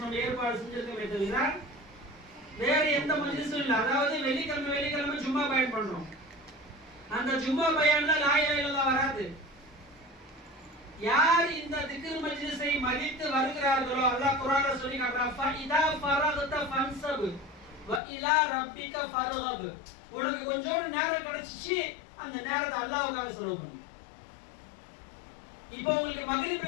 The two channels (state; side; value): drops out; right; at 18.0 s